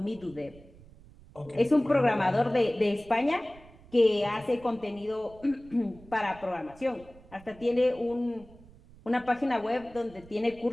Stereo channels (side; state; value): right; noise; rumble, 23 dB below the sound